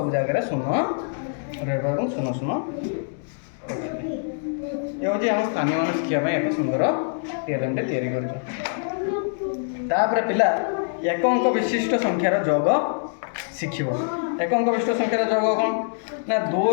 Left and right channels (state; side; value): silent; right; digital silence